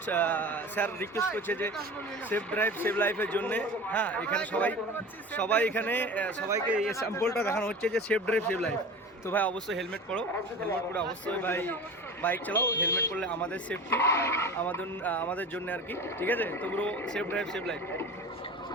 স্যার রিকোয়েস্ট করছে যে সেফ ড্রাইভ সেভ লাইফের জন্যে, হ্যাঁ এখানে সবাই এখানে সবাইকে এই স্যাম্পলটা দেখানো হচ্ছে যে সেফ ড্রাইভ সেভ লাইফ। তো ভাই অবশ্যই হেলমেট পরো, হেলমেট পরে অবশ্যই ভাই বাইক চালাও। হেলমেট পরলে আমাদের সেফটি, আমাদের জন্য আর কি, ঠিক আছে? তো পুরো সেফ ড্রাইভ সেভ লাইফ।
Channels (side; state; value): both; normal; correlation 0.35